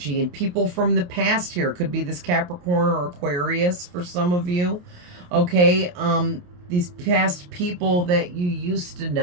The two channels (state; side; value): late; left; 28 ms